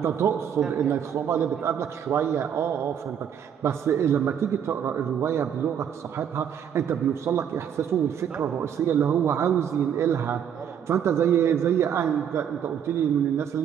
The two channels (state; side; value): quieter; left; 8.6 dB